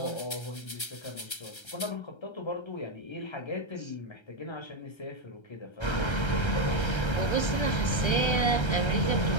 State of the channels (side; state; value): right; late; 1.3 ms